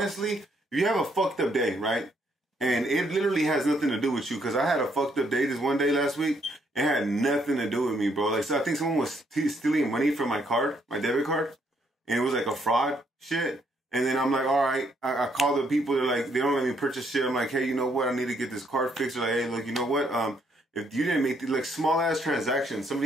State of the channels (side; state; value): both; normal; correlation 0.71